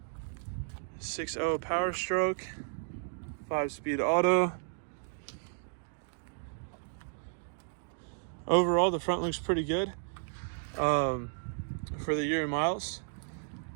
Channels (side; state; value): left; silent; digital silence